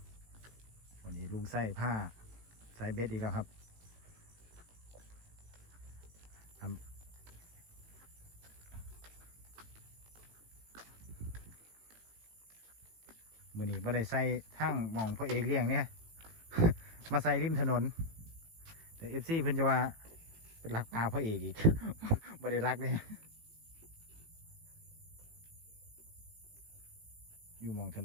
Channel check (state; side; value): late; left; 18 ms